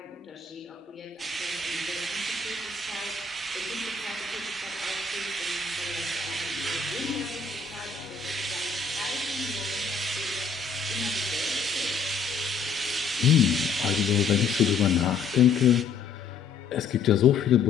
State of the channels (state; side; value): quieter; right; 5.0 dB